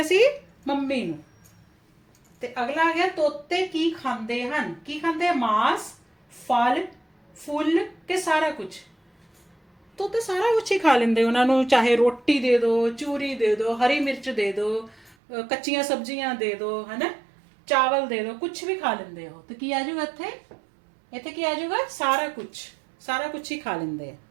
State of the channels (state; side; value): drops out; left; at 15.2 s